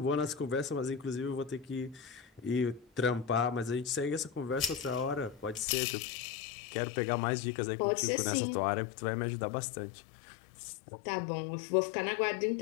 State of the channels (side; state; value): right; drops out; at 5.7 s